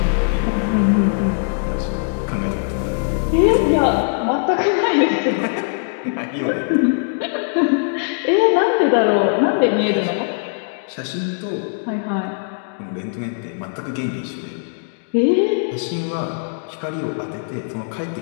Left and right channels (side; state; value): right; silent; digital silence